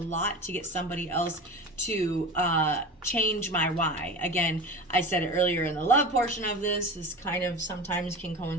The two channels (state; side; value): normal; both; correlation 0.31